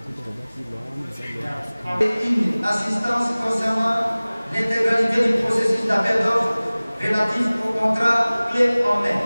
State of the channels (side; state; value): both; inverted; correlation -0.99